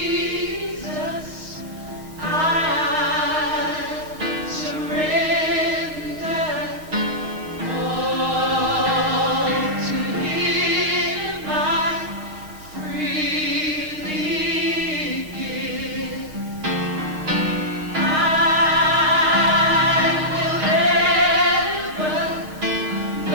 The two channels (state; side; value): late; left; 6.5 ms